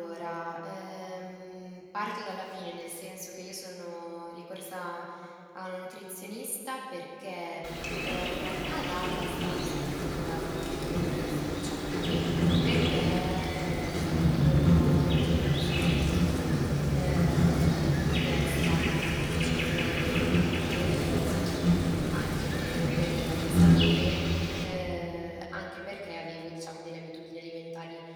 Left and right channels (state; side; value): identical; both; correlation 1.00